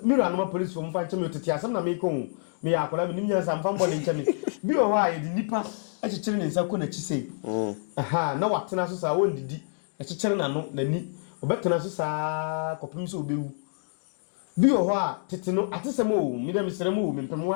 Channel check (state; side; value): silent; right; digital silence